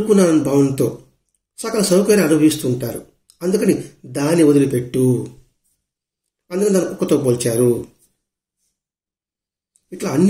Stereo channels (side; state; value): both; identical; correlation 1.00